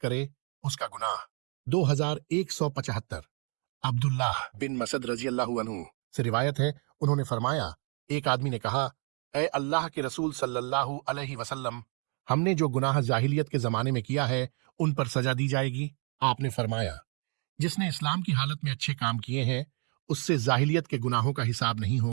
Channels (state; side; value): quieter; left; 38.9 dB